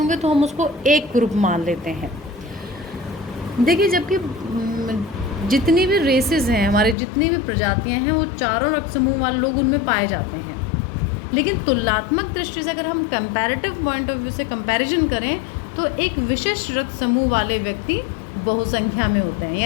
तो हम उसको एक ग्रुप मान लेते हैं। देखिए, जबकि जितनी भी रेसेस हैं, हमारे जितनी भी प्रजातियां हैं, वो चारों रक्त समूह वाले लोग उनमें पाए जाते हैं। लेकिन तुलनात्मक दृष्टि से अगर हम कंपैरेटिव पॉइंट ऑफ व्यू से कंपैरिजन करें तो एक विशिष्ट रक्त समूह वाले व्यक्ति बहुसंख्या में होते हैं।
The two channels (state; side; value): drops out; right; at 7.0 s